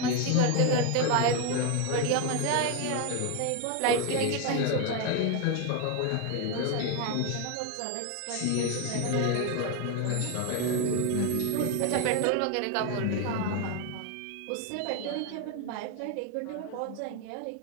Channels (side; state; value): both; different; correlation 0.01